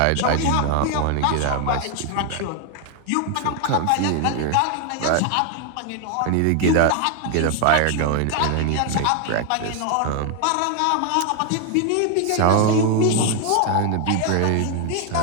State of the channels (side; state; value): both; different; correlation 0.00